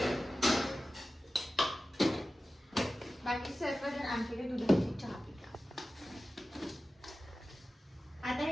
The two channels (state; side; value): normal; both; correlation 0.95